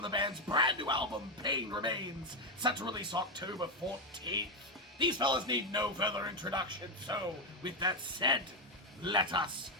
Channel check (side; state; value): both; normal; correlation 0.08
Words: the band's brand new album, Pain Remains, set to release October 14th. These fellas need no further introduction, so with that said, let us